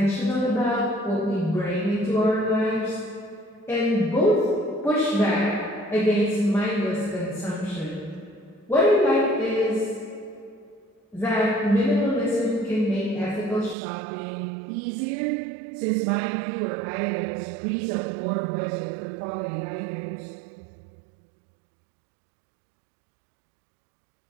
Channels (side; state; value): left; drops out; at 13.8 s